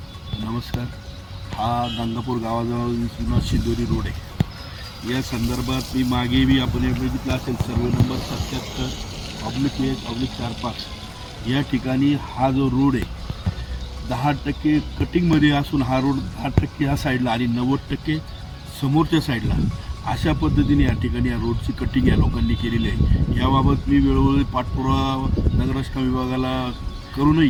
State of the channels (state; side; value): identical; both; correlation 1.00